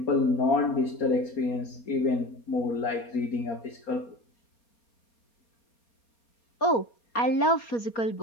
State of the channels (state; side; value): late; right; 4.3 ms